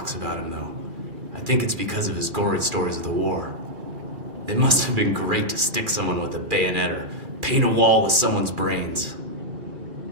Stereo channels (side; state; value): left; late; 2.4 ms